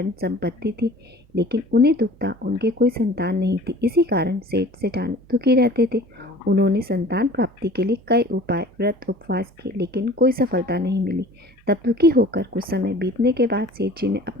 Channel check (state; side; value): normal; both; correlation 0.46